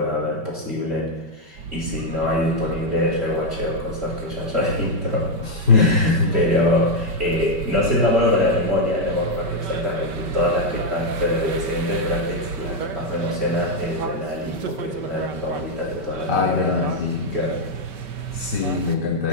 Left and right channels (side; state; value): left; late; 5.2 ms